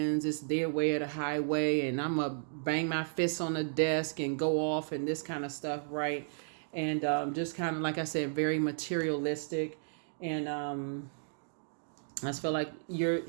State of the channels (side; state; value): left; silent; digital silence